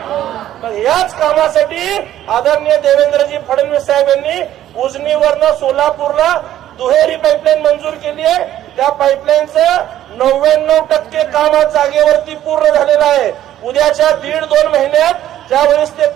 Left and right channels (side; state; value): left; quieter; 12.4 dB